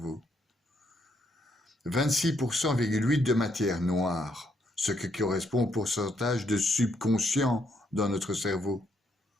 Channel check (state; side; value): normal; both; correlation 0.74